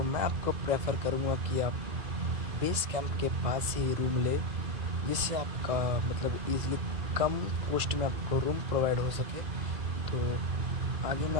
मैं आपको प्रेफर करूँगा कि आप बेस कैंप के पास ही रूम ले, जिससे आपका मतलब ईज़िली कम कॉस्ट में आपको रूम प्रोवाइड हो सके। तो आगे मैं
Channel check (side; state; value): left; late; 2.1 ms